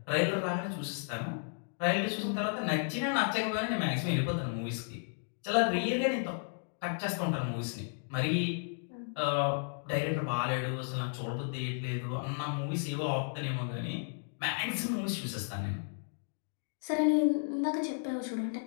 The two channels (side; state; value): right; silent; digital silence